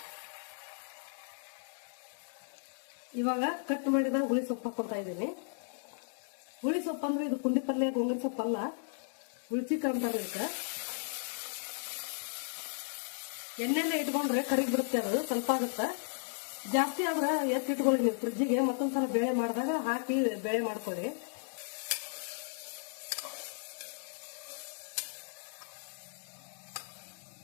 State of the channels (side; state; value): right; silent; digital silence